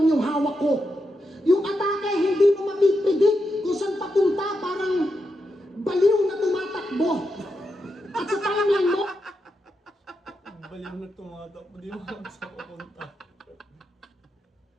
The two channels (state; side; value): normal; both; correlation 0.85